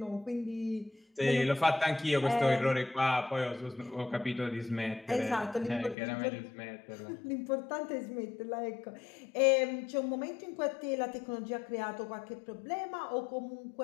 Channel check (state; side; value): drops out; right; at 6.0 s